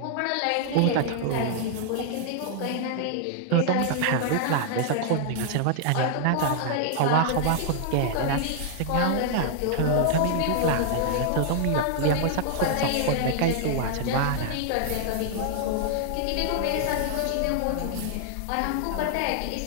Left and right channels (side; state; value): both; different; correlation -0.01